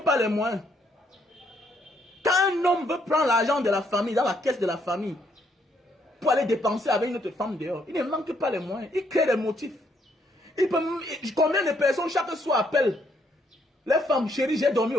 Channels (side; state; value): both; normal; correlation 0.71